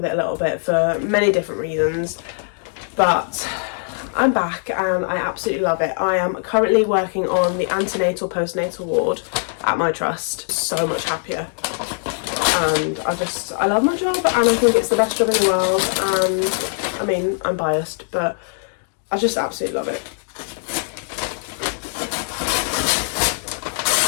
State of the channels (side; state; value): right; silent; digital silence